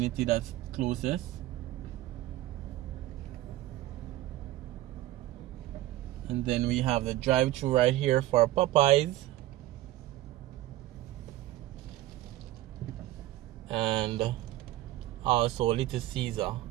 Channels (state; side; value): quieter; left; 15.7 dB